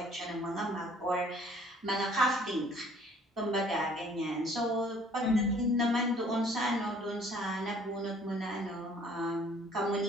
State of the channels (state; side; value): normal; both; correlation 0.57